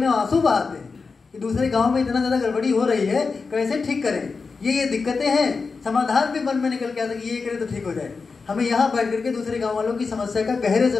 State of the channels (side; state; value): right; quieter; 4.6 dB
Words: आंसू बहाते हैं कि दूसरे गांव में इतना ज्यादा गड़बड़ी हो रही है, कैसे ठीक करें। ये दिक्कतें हैं, समाधान भी मन में निकल के आता है कि ये करे तो ठीक हो जाए। हमें यहाँ बैठ करके दूसरे गांव वालों की समस्या का गहरे